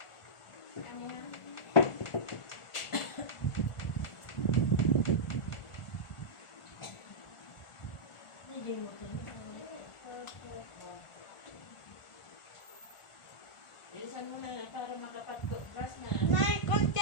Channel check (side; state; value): right; late; 1.4 ms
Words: Kaya mo nga. Hindi mo ito. Bilisan mo na para makapag-brush na. Nay,